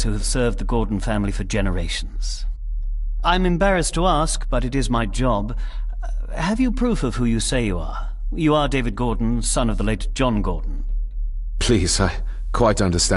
who have served the Gordon family for generations. I'm embarrassed to ask, but it is my job. Have you proof of who you say you are? You are David Gordon, son of the late John Gordon. Please, I quite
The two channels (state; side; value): identical; both; correlation 1.00